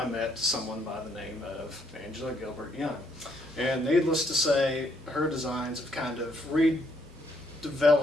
met someone by the name of Angela-Gilbert-Yeung. And needless to say, her designs have kind of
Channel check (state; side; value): normal; both; correlation 0.71